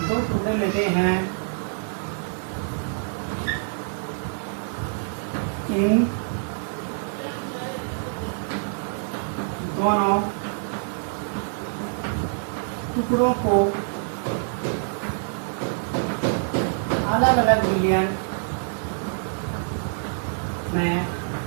हैं, इन दोनों टुकड़ों को अलग अलग विलयन में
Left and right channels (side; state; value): left; silent; 61 dB below the other